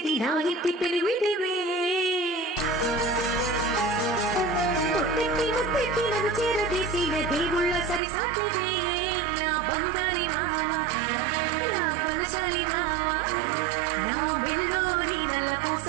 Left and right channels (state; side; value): drops out; left; at 8.0 s